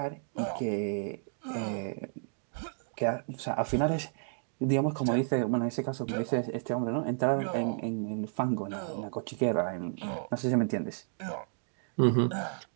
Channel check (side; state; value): left; silent; digital silence